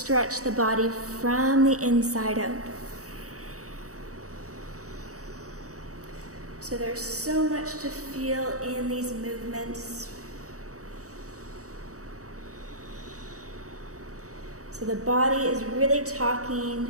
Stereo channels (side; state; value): left; late; 0.65 ms